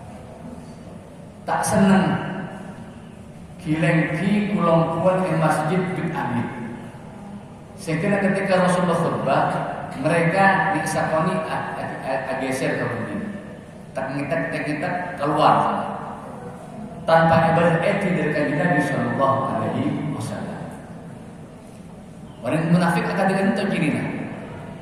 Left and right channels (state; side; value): identical; both; correlation 1.00